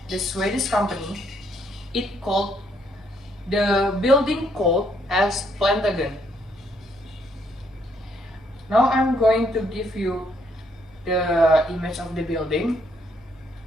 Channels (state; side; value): noise; left; hum, 27 dB below the sound